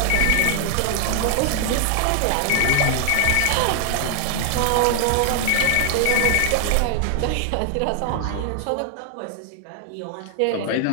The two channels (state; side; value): different; both; correlation 0.00